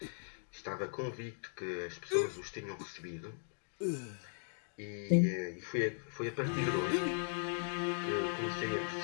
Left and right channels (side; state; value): right; silent; digital silence